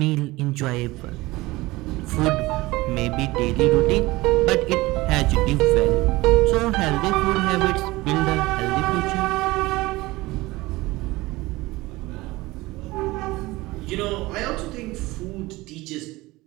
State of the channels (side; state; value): left; quieter; 20.3 dB